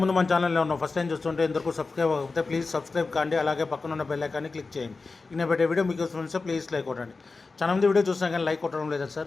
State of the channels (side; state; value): right; quieter; 4.0 dB